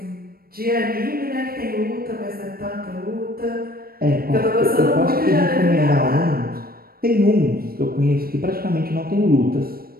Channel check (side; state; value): left; late; 0.44 ms